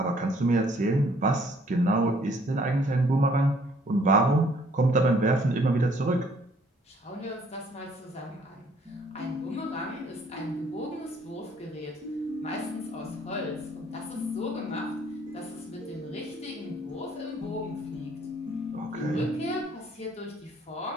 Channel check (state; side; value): normal; both; correlation 0.62